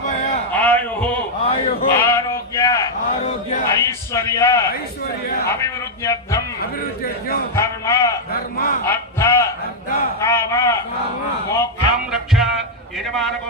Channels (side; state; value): both; normal; correlation -0.02